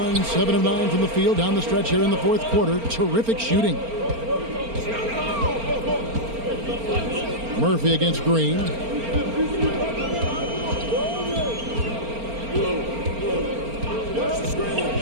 7 of 9 from the field down the stretch here in the fourth quarter. Terrific shooting. Murphy against Green.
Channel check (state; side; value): late; left; 4.4 ms